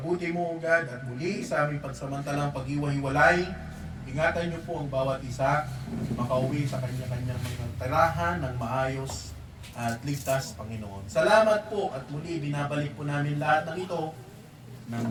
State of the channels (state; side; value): identical; both; correlation 1.00